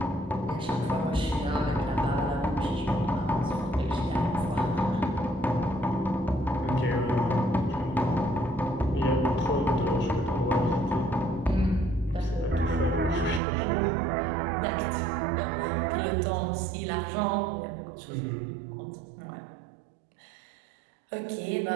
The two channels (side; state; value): left; drops out; at 13.4 s